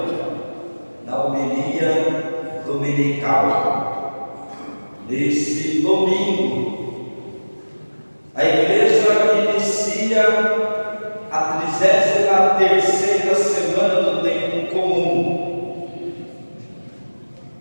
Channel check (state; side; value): inverted; both; correlation -1.00